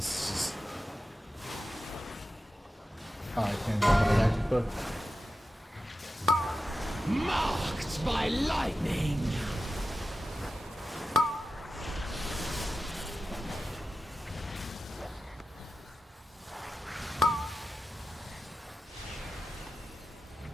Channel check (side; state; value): both; normal; correlation 0.92